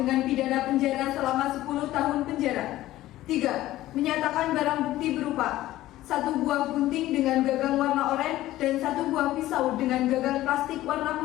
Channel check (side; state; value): right; quieter; 15.4 dB